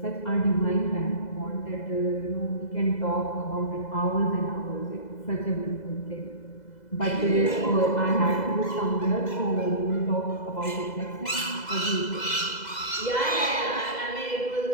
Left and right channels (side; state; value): right; late; 2.0 ms